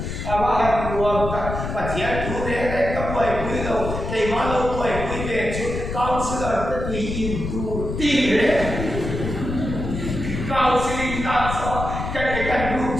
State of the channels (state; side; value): noise; left; rumble, 5 dB below the sound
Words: mà hàng nguồn và thiệt chủ đề đấy các buổi quý đầu cái mà lâu buổi quý về chút cao sư là tất nhiên im tu tin đấy cao sư linh ta so cái lúc